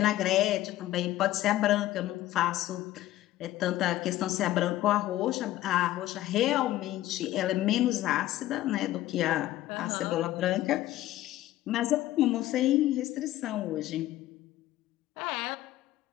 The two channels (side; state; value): right; quieter; 14.9 dB